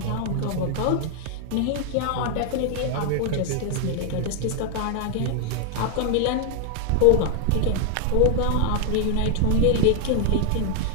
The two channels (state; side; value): different; both; correlation 0.00